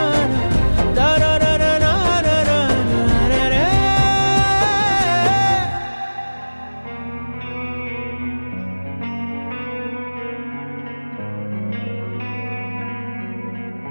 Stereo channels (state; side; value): inverted; both; correlation -1.00